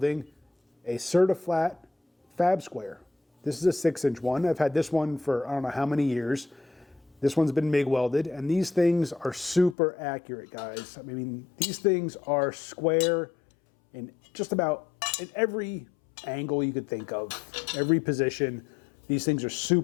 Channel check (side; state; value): right; drops out; at 9.8 s